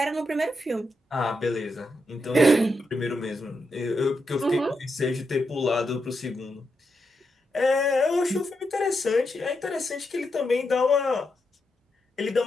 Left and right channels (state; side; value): normal; both; correlation 0.84